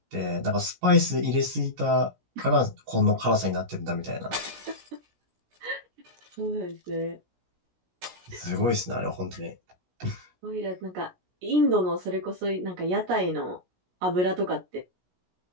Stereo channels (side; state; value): left; late; 17 ms